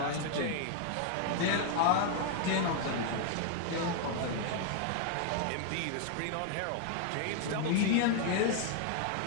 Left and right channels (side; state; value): both; different; correlation 0.00